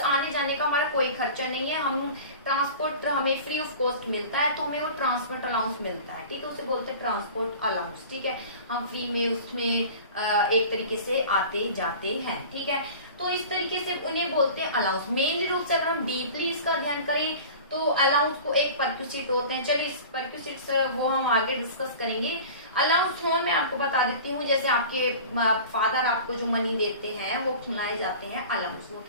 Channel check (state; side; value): inverted; both; correlation -0.39